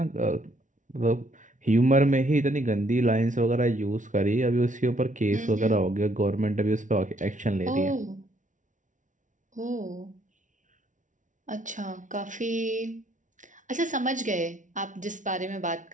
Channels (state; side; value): late; left; 0.37 ms